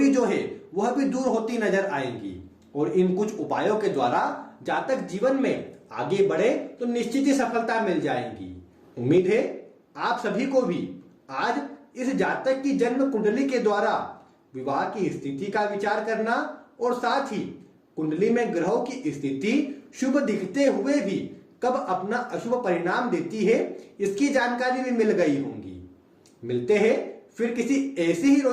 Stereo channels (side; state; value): both; identical; correlation 1.00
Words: जो है वह भी दूर होती नजर आएंगी। और इन कुछ उपायों के द्वारा जातक जीवन में आगे बढ़े तो निश्चित ही सफलता मिल जाएगी। उम्मीद है आप सभी को भी आज इस जातक की जन्म कुंडली के द्वारा विवाह की स्थिति का विचार करना और साथ ही कुंडली में ग्रहों की स्थिति शुभ दिखते हुए भी कब अपना अशुभ परिणाम देती है, इसकी जानकारी भी मिल गई होंगी। मिलते हैं फिर किसी ऐसी ही